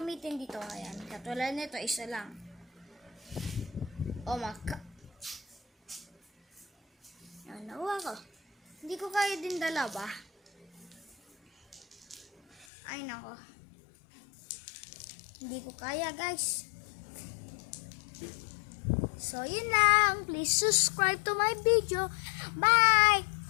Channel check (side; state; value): right; drops out; at 12.7 s